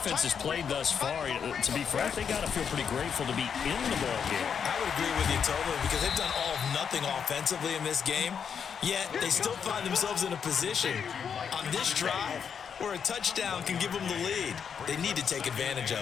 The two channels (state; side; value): quieter; right; 7.1 dB